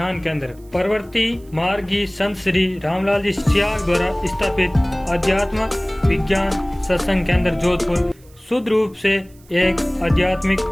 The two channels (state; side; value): noise; right; hiss, 29 dB below the sound